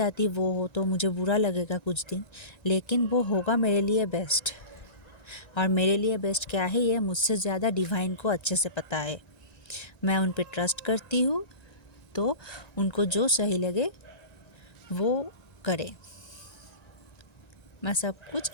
वो हो तो मुझे बुरा लगेगा कुछ दिन, लेकिन वो होगा मेरे लिए बेस्ट। और मेरे लिए बेस्ट क्या है ये मुझसे ज़्यादा डिवाइन को अच्छे से पता है। मैं उन पे ट्रस्ट करती हूँ, तो उनको जो सही लगे वो करे, मैं सब कुछ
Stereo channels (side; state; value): right; late; 1.9 ms